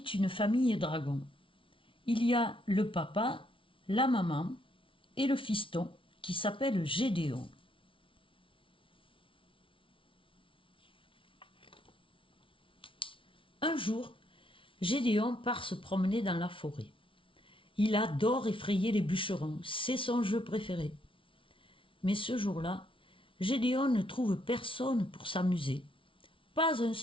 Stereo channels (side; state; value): right; late; 0.25 ms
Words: une famille dragons. Il y a le papa, la maman et le fiston qui s'appelle Gédéon. Un jour, Gédéon part se promener dans la forêt. Il adore effrayer les bûcherons, c'est son jeu préféré. Mais ce jour-là, Gédéon ne trouve personne pour s'amuser. Pas un